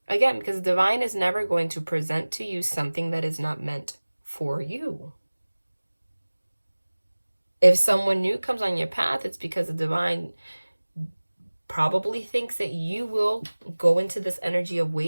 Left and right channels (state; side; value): inverted; both; correlation -1.00